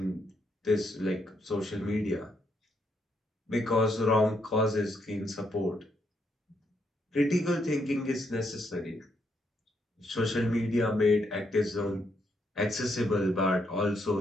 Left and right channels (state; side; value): normal; both; correlation 0.76